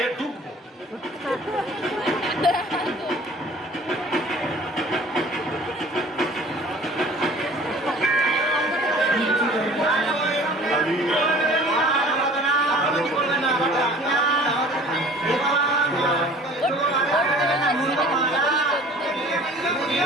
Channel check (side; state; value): both; normal; correlation 0.48